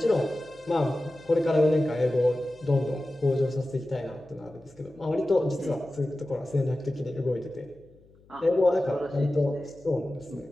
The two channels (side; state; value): left; noise; hum, 28 dB below the sound